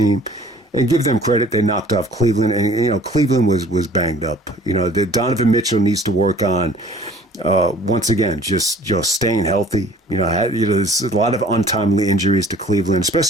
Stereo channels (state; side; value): normal; both; correlation 0.51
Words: and give them credit. They knocked off Cleveland, and Cleveland was banged up. The Donovan Mitchell needs to work on once again just staying healthy. There's a lot of untimely injuries to Cleveland,